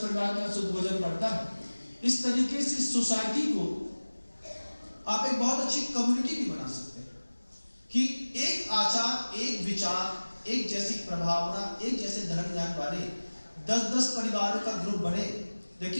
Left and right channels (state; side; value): inverted; both; correlation -1.00